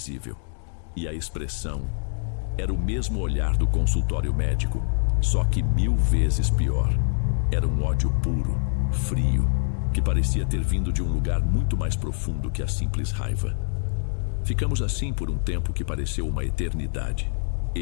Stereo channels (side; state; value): right; silent; digital silence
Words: E a expressão era o mesmo olhar do consultório médico, só que 1000 vezes pior. Era um ódio puro, frio, que parecia ter vindo de um lugar muito mais profundo que a simples raiva. Ficamos assim por um tempo que pareceu uma eternidade.